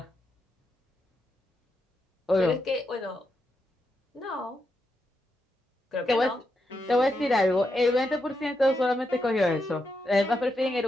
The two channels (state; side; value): normal; both; correlation 0.84